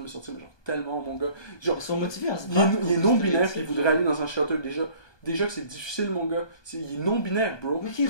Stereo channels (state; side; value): late; right; 1.2 ms